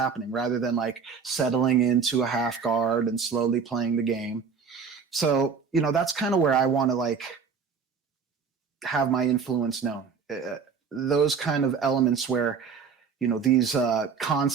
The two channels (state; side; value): quieter; left; 6.0 dB